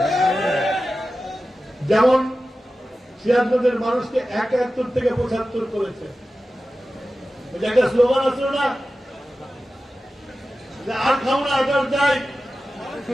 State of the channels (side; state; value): both; normal; correlation 0.94